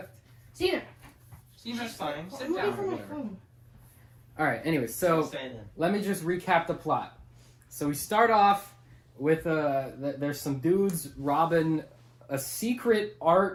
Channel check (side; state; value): both; identical; correlation 1.00